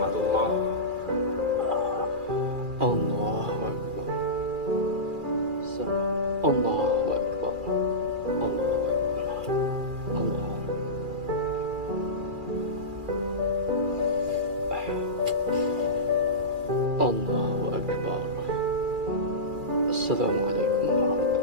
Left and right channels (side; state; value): left; late; 2.4 ms